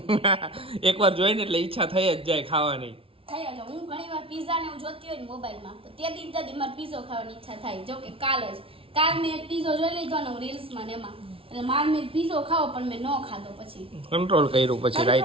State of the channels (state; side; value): late; left; 0.26 ms